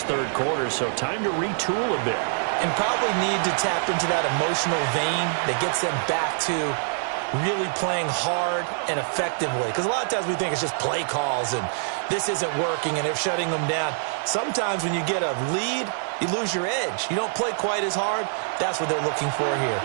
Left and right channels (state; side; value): silent; left; digital silence